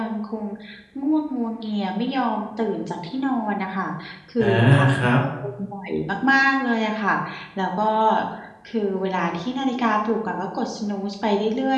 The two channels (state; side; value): identical; both; correlation 1.00